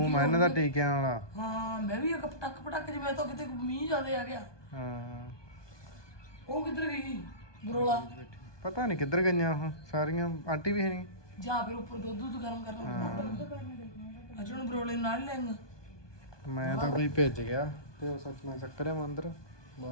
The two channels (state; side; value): late; right; 1.2 ms